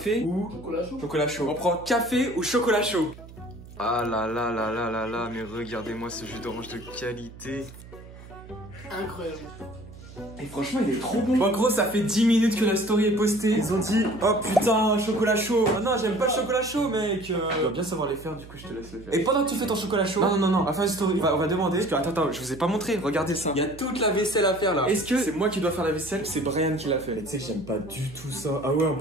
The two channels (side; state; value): right; noise; hum, 17 dB below the sound